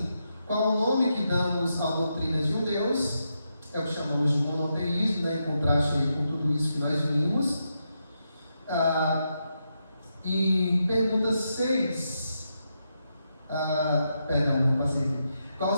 Qual o nome que damos à doutrina de um Deus? É o que chamamos de monoteísmo, em contraste com tudo isso que nós vimos. E pergunta 6. Perdão, passei aqui. Qual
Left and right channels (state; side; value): inverted; both; correlation -0.84